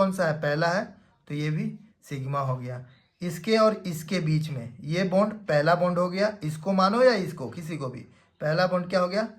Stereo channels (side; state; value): both; identical; correlation 1.00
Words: सा है? पहला है, तो ये भी सिग्मा हो गया। इसके और इसके बीच में ये बॉन्ड पहला बॉन्ड हो गया, इसको मानो या इसको, किसी को भी, पहला बॉन्ड क्या हो गया?